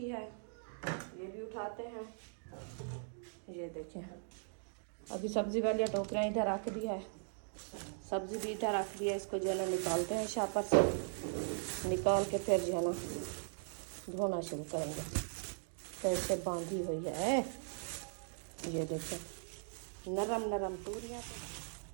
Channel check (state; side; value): silent; left; digital silence